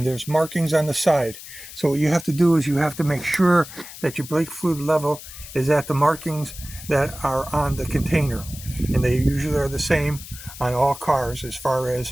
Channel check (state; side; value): noise; left; hiss, 14 dB below the sound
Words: there's markings on the side. So what you have to do is you have to make sure that your brake fluid level is at the markings that are on the container. And they usually are the same on all cars as far